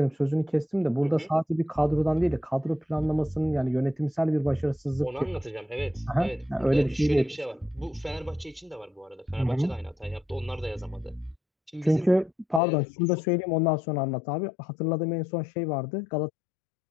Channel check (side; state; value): right; drops out; at 12.6 s